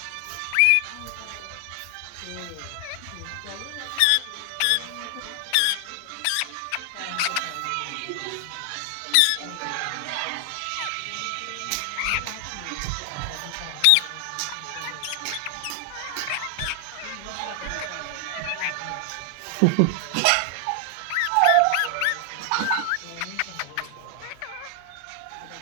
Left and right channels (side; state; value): both; different; correlation 0.00